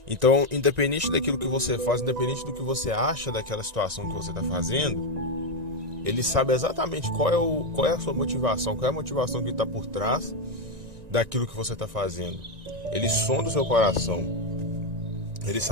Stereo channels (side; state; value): left; late; 1.9 ms